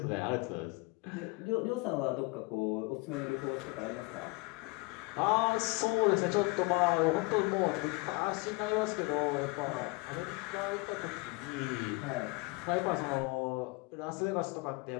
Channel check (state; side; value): quieter; right; 26.0 dB